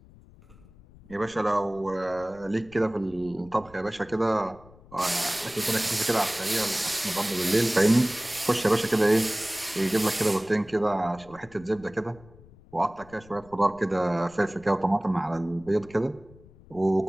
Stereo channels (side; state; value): left; noise; rumble, 23 dB below the sound